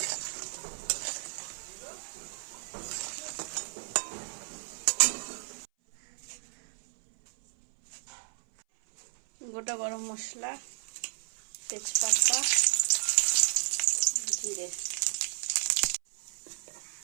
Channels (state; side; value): silent; left; 56 dB below the other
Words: গোটা গরম মশলা, তেজপাতা, জিরে,